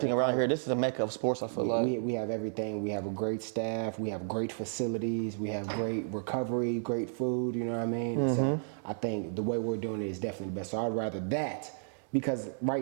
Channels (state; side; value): silent; left; digital silence